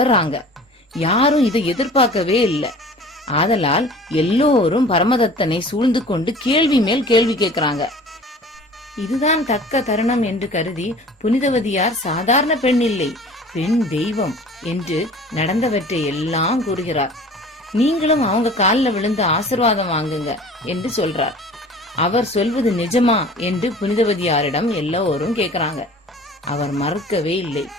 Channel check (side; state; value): both; normal; correlation 0.45